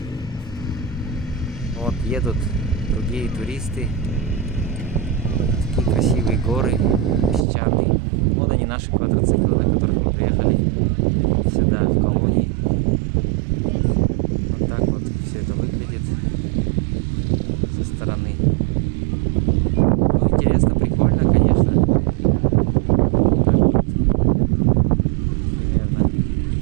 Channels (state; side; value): drops out; left; at 7.4 s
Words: Вот едут другие туристы. Такие красивые горы, песчаные. Вот они, наши квадроциклы, на которых мы приехали сюда, в колонии. Вот так вот все это выглядит со стороны. Ну, интересно, прикольно, конечно. Так вот. Примерно.